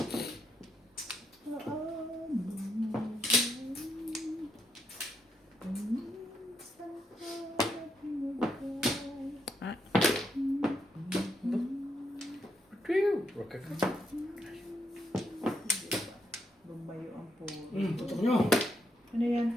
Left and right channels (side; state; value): both; normal; correlation 0.78